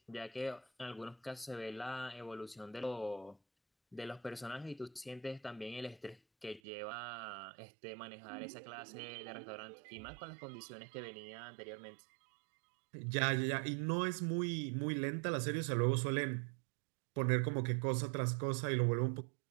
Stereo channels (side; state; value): left; drops out; at 6.6 s